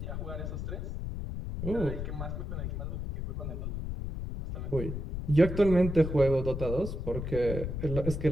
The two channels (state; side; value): noise; left; rumble, 5 dB below the sound